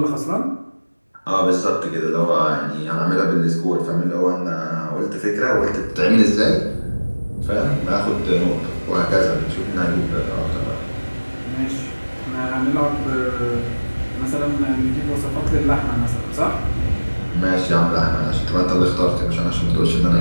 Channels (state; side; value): inverted; both; correlation -1.00